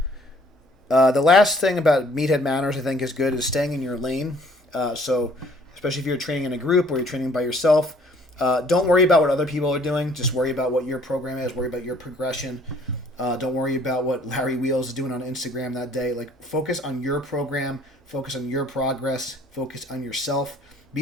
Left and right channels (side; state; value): both; normal; correlation 0.58